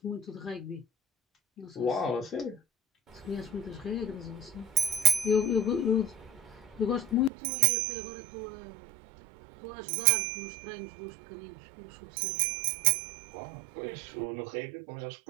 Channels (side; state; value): left; drops out; at 7.3 s